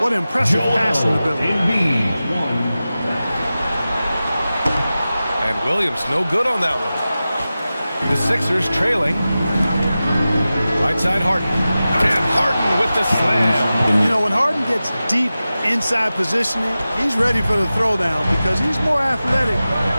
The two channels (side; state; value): both; inverted; correlation -0.95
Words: what impressive passing ability. And Williams no good on that one. The Sixers trailing. Right side Harden. And Harden with the slam. You know, when Harden gets deep inside positioning, he's ready for the throwdown because he's more athletic